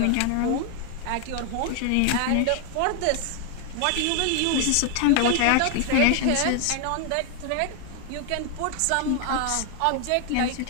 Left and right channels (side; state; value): both; different; correlation 0.01